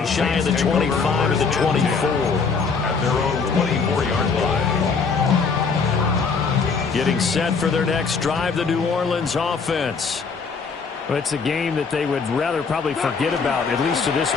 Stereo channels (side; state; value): right; quieter; 5.1 dB